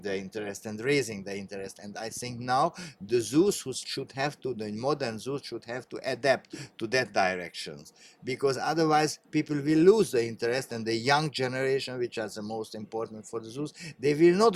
the interest and raising the interest. And I think now the the modern zoos should have to adapt to that direction, because otherwise people will lose the interest, and the young generation, which is the most important for the zoos, they will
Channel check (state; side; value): identical; both; correlation 1.00